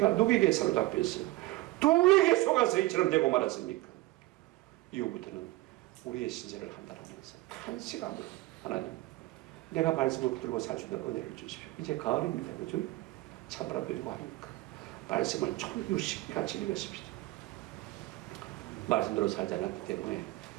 누구에게 사로잡혔어요? 누구에게 속아서 이처럼 되고 말았습니까? 이후부터는 우리의 신세를 한다라면서 한시간으로 하나님 내가 말씀을 붙들고 살 수 있는 은혜를 주십시오. 이제 가을입니다. 그죠? 참으라 누리고 하니까 말씀을 총유식같이 읽었습니다. 말씀대로 살지 않았기 때문에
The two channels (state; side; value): quieter; left; 18.8 dB